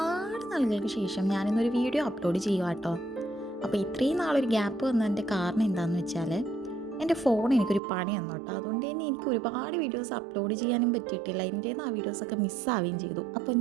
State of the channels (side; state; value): left; drops out; at 7.8 s